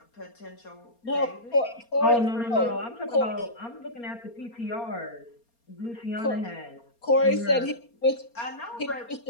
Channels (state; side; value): late; right; 4.3 ms